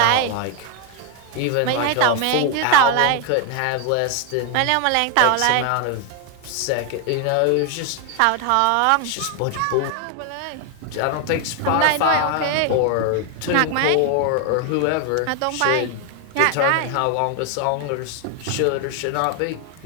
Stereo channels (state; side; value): different; both; correlation 0.01